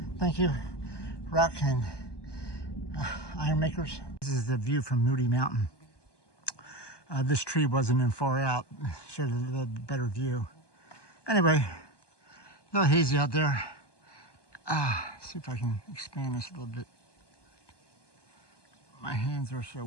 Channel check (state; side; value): late; right; 1.2 ms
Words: Thank you, rock and iron makers. This is the view from Moody Mountain. This tree wasn't in far out, showed a little better view. Anyway, a little hazy out there. See if I can expand this a little bit. My hands are so